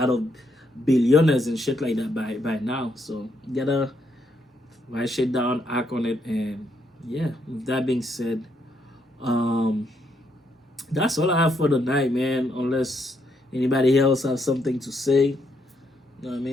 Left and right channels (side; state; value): both; normal; correlation 0.76